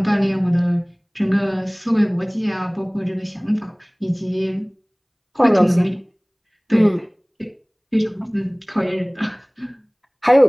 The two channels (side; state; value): both; identical; correlation 1.00